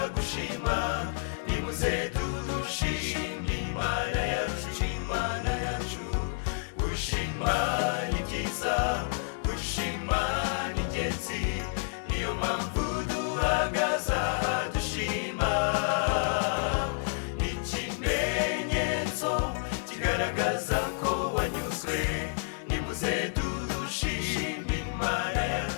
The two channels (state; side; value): silent; right; digital silence